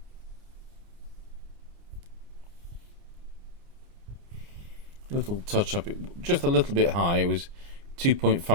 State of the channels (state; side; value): late; left; 29 ms